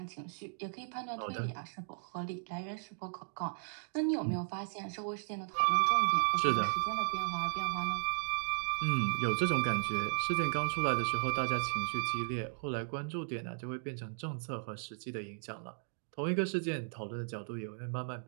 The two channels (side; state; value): left; silent; digital silence